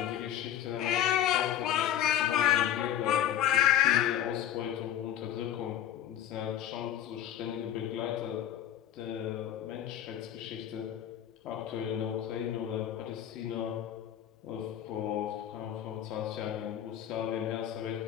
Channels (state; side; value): quieter; right; 11.0 dB